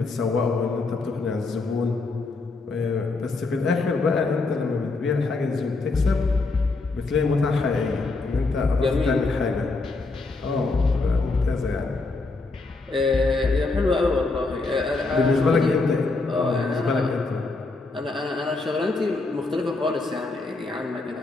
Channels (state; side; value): quieter; right; 3.6 dB